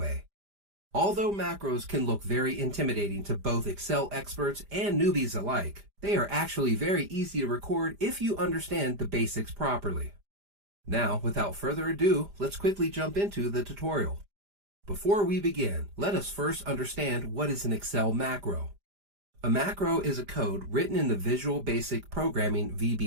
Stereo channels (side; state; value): left; late; 5.0 ms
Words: Although macros can look very intimidating to both Excel experts and newbies alike, they are actually very easy to record if you understand the basics properly. Now, without further ado, let's quickly jump into the tutorial. Before we begin, let us first understand what is an Excel macro. A macro is a code written in the Visual Basic Programming